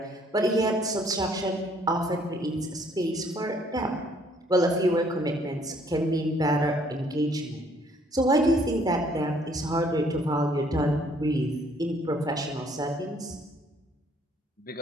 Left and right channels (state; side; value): normal; both; correlation 0.63